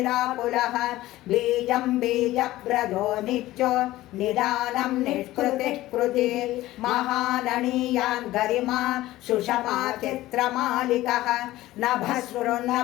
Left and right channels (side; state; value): right; quieter; 16.4 dB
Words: बीजं बीजप्रदो नित्यो निदानं निष्कृतिः कृति महाननीयान् गरिमा सुषमा चित्रमालिकः